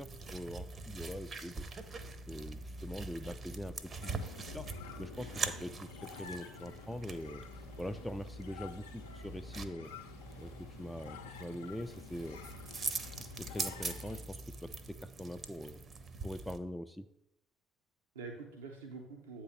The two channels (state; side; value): normal; both; correlation 0.76